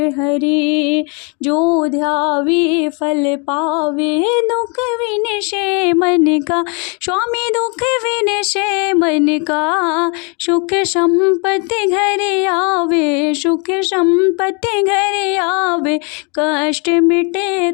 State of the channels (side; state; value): right; quieter; 34.5 dB